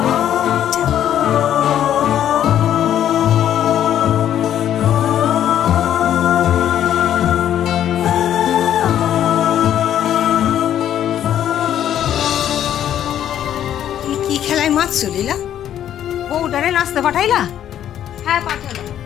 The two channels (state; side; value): quieter; right; 10.7 dB